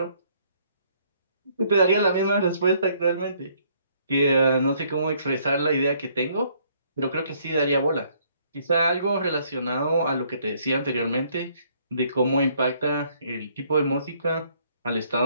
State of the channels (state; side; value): inverted; both; correlation -0.65